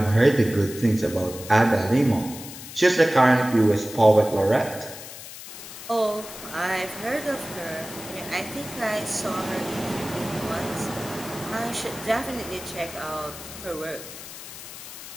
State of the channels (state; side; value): noise; left; hiss, 13 dB below the sound